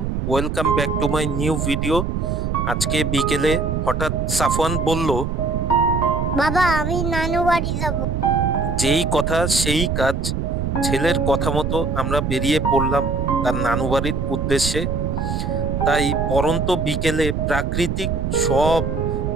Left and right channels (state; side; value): noise; right; rumble, 1 dB below the sound